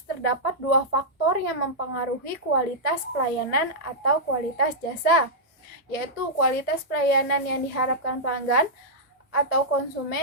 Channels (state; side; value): normal; both; correlation -0.10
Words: terdapat dua faktor yang mempengaruhi kualitas pelayanan atau kualitas jasa, yaitu kualitas pelayanan yang diharapkan pelanggan atau